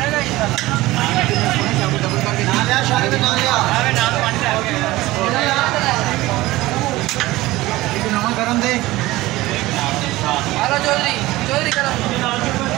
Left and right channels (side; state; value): left; quieter; 18.4 dB